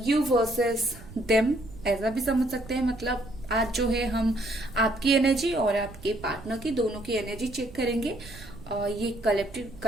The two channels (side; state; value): right; noise; rumble, 17 dB below the sound